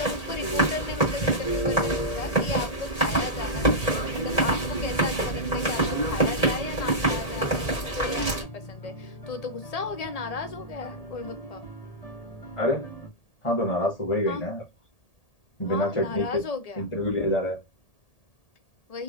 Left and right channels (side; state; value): right; late; 1.8 ms